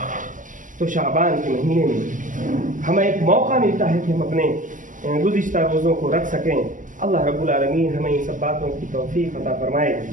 تو شعبان کے مہینے میں ہمیں ایک موقع ملتا ہے کہ ہم اپنے گزشتہ روزوں کو رکھ سکیں. اللہ رب العالمین ہمیں ان سب باتوں کی توفیق عطا فرمائے.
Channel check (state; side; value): late; left; 0.38 ms